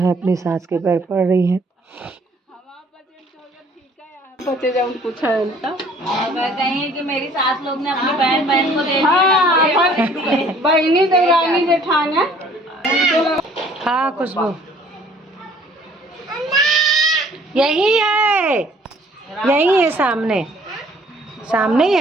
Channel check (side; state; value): both; normal; correlation 0.57